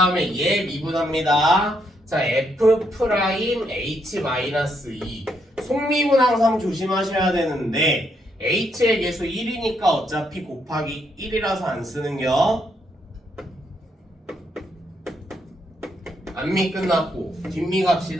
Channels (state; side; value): normal; both; correlation 0.76